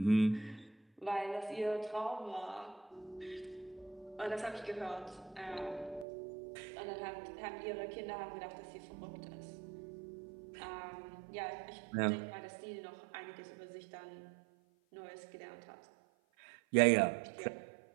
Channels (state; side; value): drops out; left; at 6.1 s